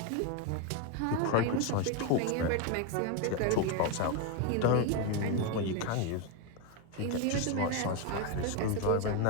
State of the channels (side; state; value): both; different; correlation 0.02